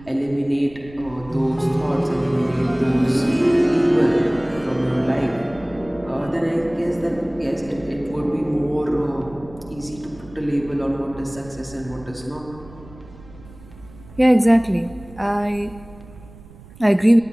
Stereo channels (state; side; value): noise; right; rumble, 20 dB below the sound